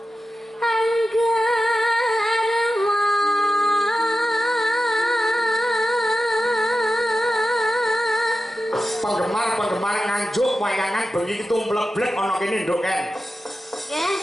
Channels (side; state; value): both; normal; correlation 0.92